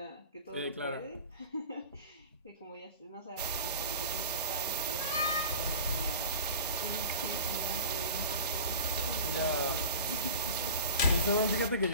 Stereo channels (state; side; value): inverted; both; correlation -0.37